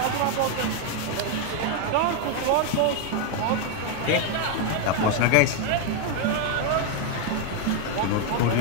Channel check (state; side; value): different; both; correlation 0.01